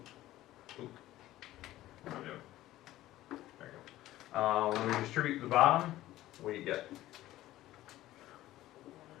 What am I doing? There you go. When we distribute the bottom, what do you get?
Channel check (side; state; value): right; quieter; 15.3 dB